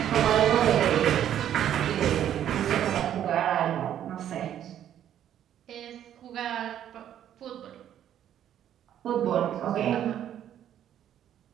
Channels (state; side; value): quieter; left; 10.6 dB